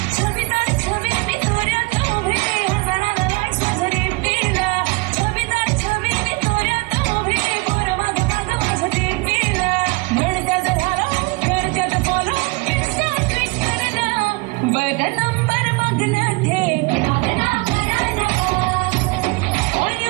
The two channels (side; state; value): left; quieter; 26.5 dB